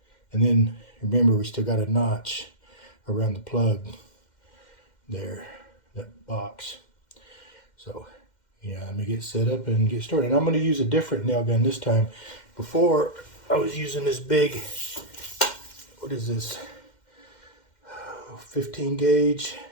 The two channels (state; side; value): late; right; 2.1 ms